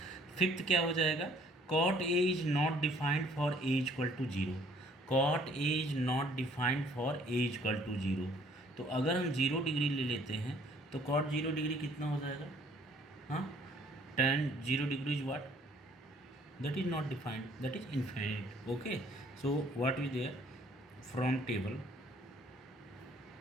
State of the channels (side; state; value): both; normal; correlation 0.60